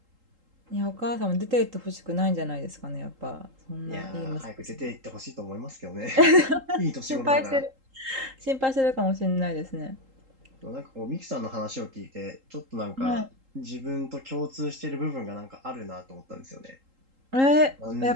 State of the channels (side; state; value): left; late; 3.8 ms